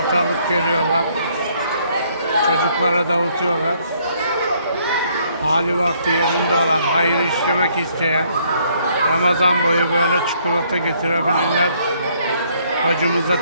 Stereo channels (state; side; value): inverted; both; correlation -0.67